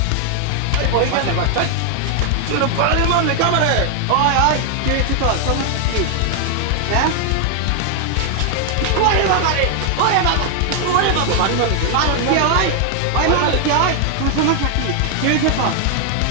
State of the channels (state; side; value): different; both; correlation 0.00